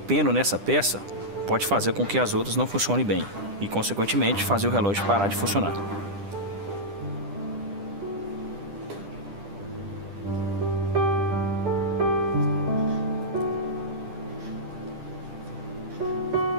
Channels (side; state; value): left; late; 10 ms